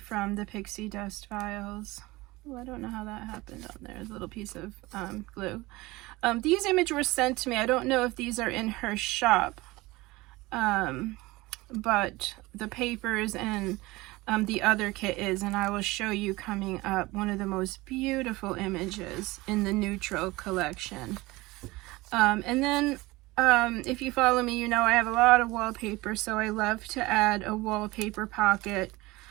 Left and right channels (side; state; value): left; quieter; 20.9 dB